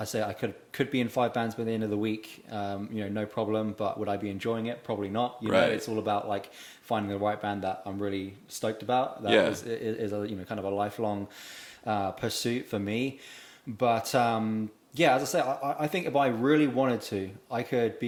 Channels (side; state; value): both; identical; correlation 1.00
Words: say I could be in 5 bands by the end of the week, you know, no problem. But would I be enjoying it? Probably not. You know, it's all about like finding the right band that I'm really stoked about. That is a, you know, kind of a lifelong pursuit for me. But yeah, as I say, I think if I really wanted to, I could